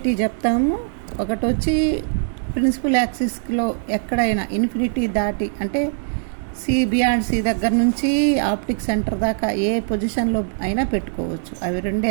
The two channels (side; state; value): left; silent; digital silence